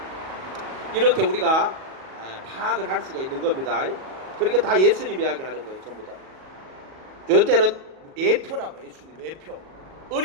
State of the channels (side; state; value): left; late; 38 ms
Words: 이렇게 우리가 파악을 할 수가 있는 겁니다. 그러니까 다 예수님 이야기하는 거예요. 전부 다. 이때는 예표라고, 예수님 예표,